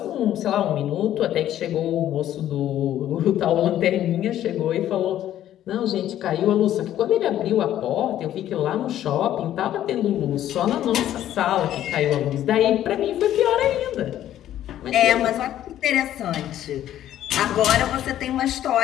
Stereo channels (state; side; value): quieter; right; 12.0 dB